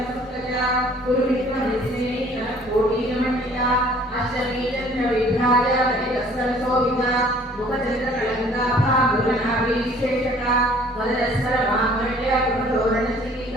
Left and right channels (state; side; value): normal; both; correlation 0.55